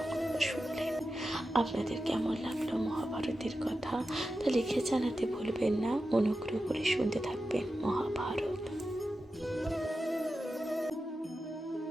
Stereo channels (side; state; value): both; normal; correlation 0.91